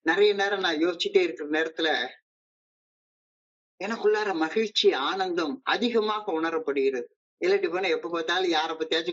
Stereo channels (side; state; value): both; identical; correlation 1.00